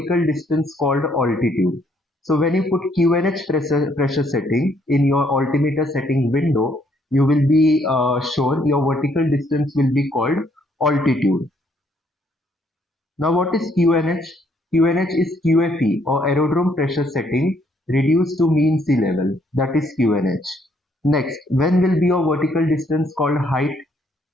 distance called altitude? So when you put QNH pressure setting in your altimeter setting window, you will be shown your vertical distance will be called altitude. Now what is QNH? QNH is QFE or aerodrome pressure setting reduced to mean sea level. That is QNH. Next, when will be your vertical distance called height?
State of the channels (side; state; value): both; normal; correlation 0.69